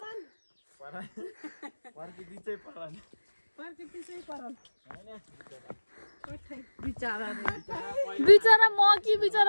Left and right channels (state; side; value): inverted; both; correlation -1.00